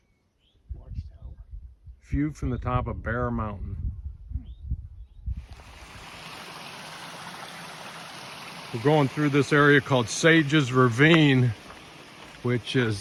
View from the top of Bear Mountain. We're going through this area called Sage's Ravine, which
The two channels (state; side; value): identical; both; correlation 1.00